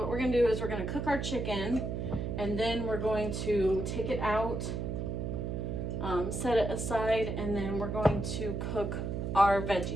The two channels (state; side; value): noise; right; hum, 3 dB below the sound